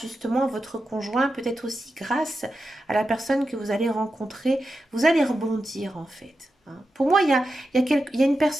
à votre conjoint, peut-être aussi grâce à la personne que vous allez rencontrer, vous allez rebondir en fait. Hein. Pour moi, il y a une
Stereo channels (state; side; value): normal; both; correlation 0.90